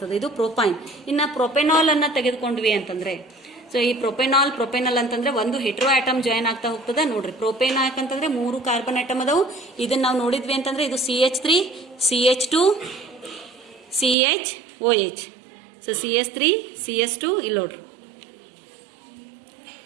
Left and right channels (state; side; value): drops out; left; at 14.2 s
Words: ಇದು ಪ್ರೋಪೈನ್. ಇನ್ನ ಪ್ರೊಪೆನಾಲ್ ಅನ್ನ ತೆಗೆದುಕೊಂಡ್ವಿ ಅಂತಂದ್ರೆ, ಸೊ ಈ ಪ್ರೊಪೆನಲ್ ಅಂತಂದ್ರೆ ಒಂದು ಹೆಟ್ರೋ ಆಟಮ್ ಜಾಯಿನ್ ಆಗ್ತಾ ಹೋಗ್ತದೆ. ನೋಡ್ರಿ ಪ್ರೋಪೇನ್ ಯಾಕಂತಂದ್ರೆ 3 ಕಾರ್ಬನ್ ಐಟಮ್ ಅದಾವು. ಇದನ್ನ ನಾವು ನೋಡಿದ್ವಿ ಅಂತಂದ್ರೆ ಇದು CH3, CH2, CHOH. So CH3, CH2 ಇಲ್ಲಿ ನೋಡ್ರಿ.